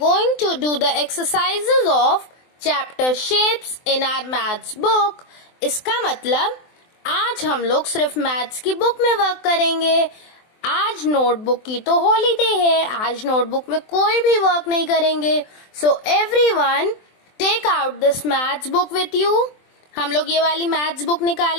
to do the exercises of chapter shapes in our maths book. इसका मतलब आज हम लोग सिर्फ मैथ्स की बुक में वर्क करेंगे. आज नोटबुक की तो हॉलीडे है, आज नोटबुक में कोई भी वर्क नहीं करेंगे. So everyone take out this maths book with you. हम लोग ये वाली मैथ्स बुक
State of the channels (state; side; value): late; right; 23 ms